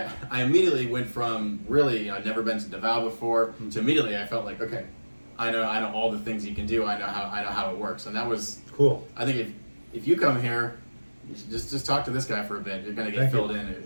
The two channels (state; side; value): inverted; both; correlation -1.00